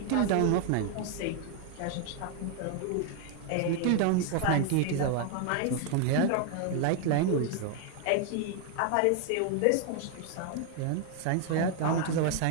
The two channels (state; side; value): different; both; correlation 0.00